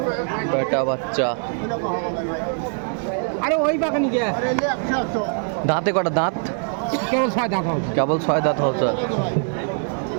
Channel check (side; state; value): left; silent; 57 dB below the other